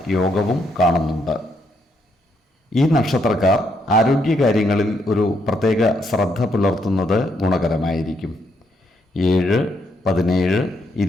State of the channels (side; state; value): both; normal; correlation 0.75